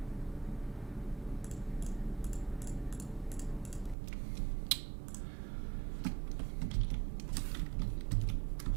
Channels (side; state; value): left; drops out; at 4.0 s